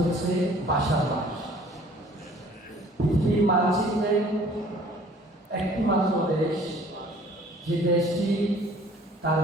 ভাষার মাস। পৃথিবীর মানচিত্রে একটি মাত্র দেশ, যে দেশটি তার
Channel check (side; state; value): both; normal; correlation 0.53